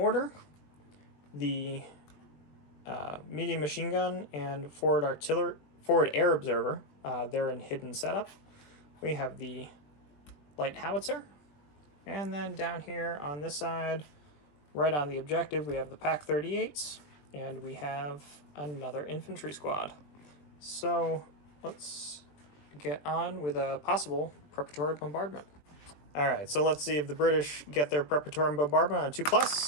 the medium machine gun, and forward air observer. They're in hidden setup. We have the light howitzer, and then down here on this side, right on the objective, we have the PAC 38s, and we have another infantry squad. So let's get on with a possible preparatory bombardment. All right, so let's see if the British get their preparatory bombardment on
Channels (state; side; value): late; right; 20 ms